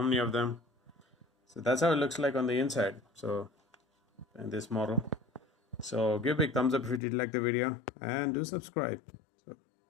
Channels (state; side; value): drops out; right; at 7.0 s